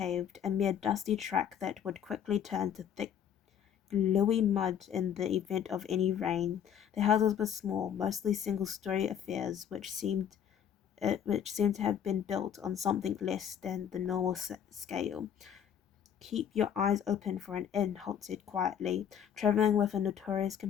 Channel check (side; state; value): right; quieter; 8.9 dB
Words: a mere dusty track that would quickly turn to thick, gluey mud in the event of any rain. The houses were small, mostly single-story affairs, which seemed to have been built on something less than the normal scale. Keep your eyes open for an inn, Holt said quietly. Travelling with a notorious